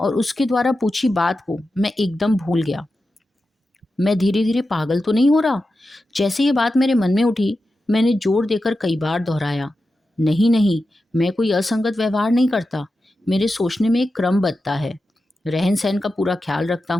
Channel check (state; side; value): normal; both; correlation 0.91